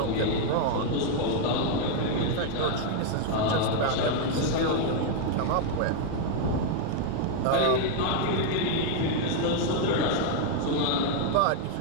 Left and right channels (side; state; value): both; different; correlation 0.00